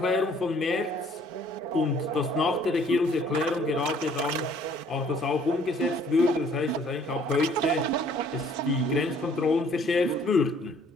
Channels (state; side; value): normal; both; correlation 0.59